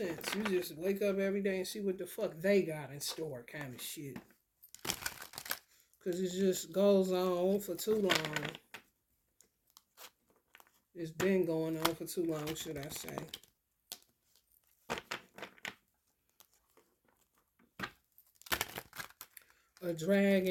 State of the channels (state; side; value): identical; both; correlation 1.00